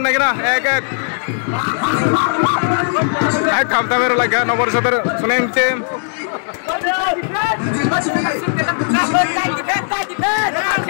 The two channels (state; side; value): silent; right; 68 dB below the other